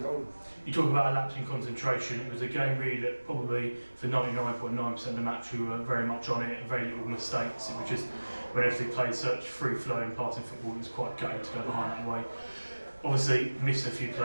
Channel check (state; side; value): inverted; both; correlation -1.00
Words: goal. You talk about a lapse in concentration. It was a game really that probably for 99.9% of the match we were very much on it, very little mistakes. It was just when everything played such free-flowing passing football, it was quite gutting to go behind that way. Obviously missed a few